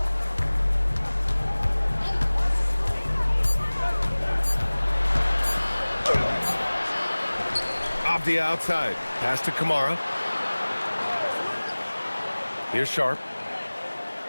Avdija outside. Pass to Kamara. Here's Sharp.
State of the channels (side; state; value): both; inverted; correlation -1.00